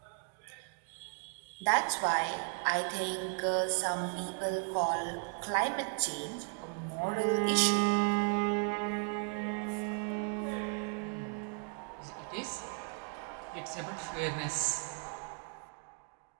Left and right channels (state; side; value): quieter; left; 38.5 dB